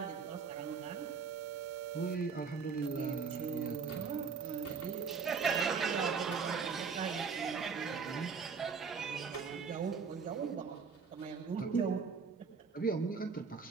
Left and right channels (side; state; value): left; quieter; 5.6 dB